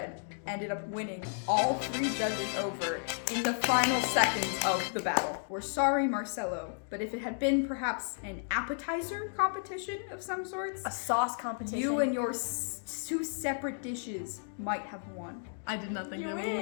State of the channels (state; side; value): silent; right; digital silence